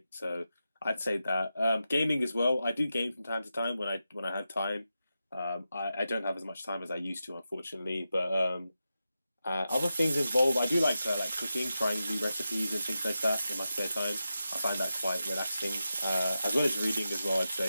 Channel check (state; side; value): inverted; both; correlation -0.90